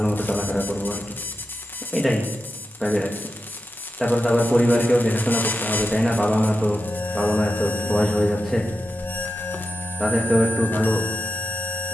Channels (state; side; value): normal; both; correlation 0.89